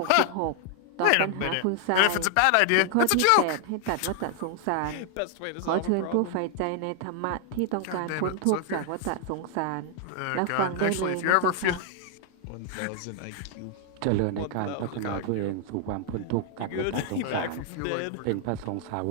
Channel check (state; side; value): different; both; correlation 0.00